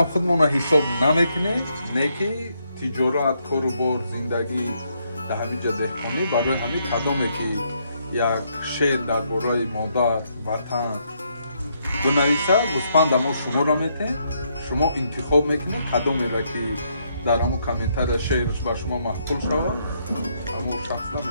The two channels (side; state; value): both; inverted; correlation -0.75